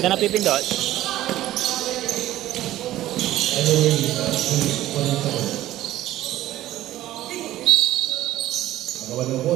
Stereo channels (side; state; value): left; quieter; 14.5 dB